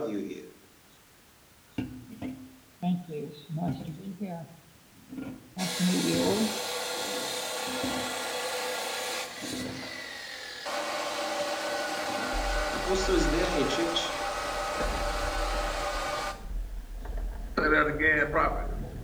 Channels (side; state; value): both; identical; correlation 1.00